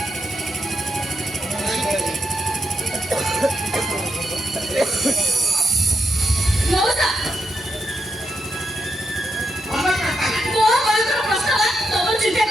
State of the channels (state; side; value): normal; both; correlation 0.82